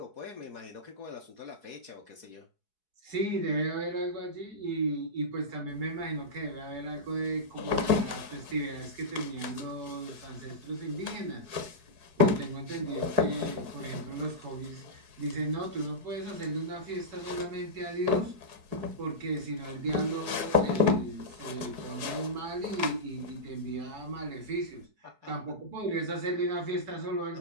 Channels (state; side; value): late; left; 4.7 ms